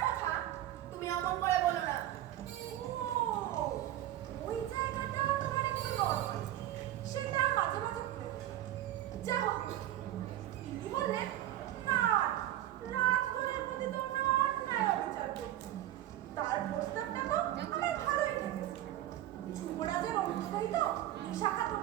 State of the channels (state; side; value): quieter; left; 13.4 dB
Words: কথা তুমি অমন করে বলো না। ও, ওই জায়গাটা তোমার একটু নরমাল। সেটা মাঝে মাঝে প্রয়োজন। যা হোক, তিনি বললেন, না, রাজকুমারের প্রতি তোমরা অন্যায় অবিচার করছো। তার প্রস্তাবটা তো আমার ভালোই লেগেছে। যুবরাজের অনুসারী তো শাখা